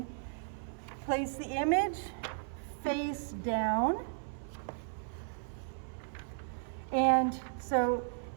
place the image face down, and so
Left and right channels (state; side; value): silent; left; 54 dB below the other